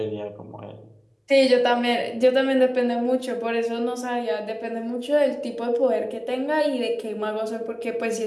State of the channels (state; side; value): identical; both; correlation 1.00